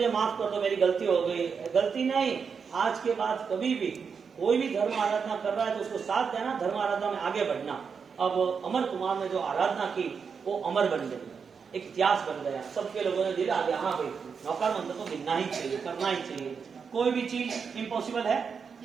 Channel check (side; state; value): left; quieter; 6.0 dB